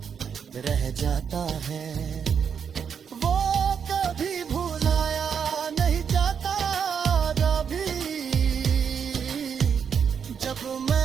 रह जाता है वो कभी भुलाया नहीं जाता। कभी जब मैं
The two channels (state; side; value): quieter; left; 7.2 dB